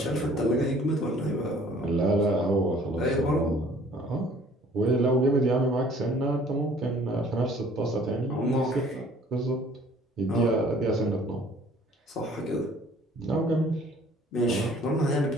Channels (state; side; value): normal; both; correlation 0.55